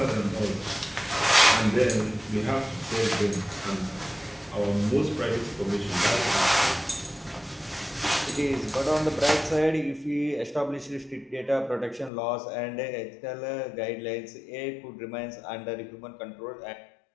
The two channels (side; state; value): right; drops out; at 12.1 s